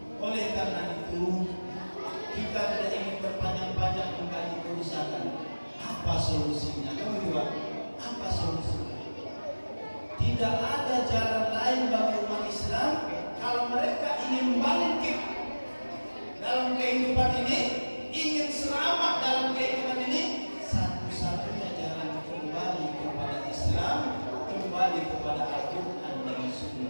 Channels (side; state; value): both; inverted; correlation -1.00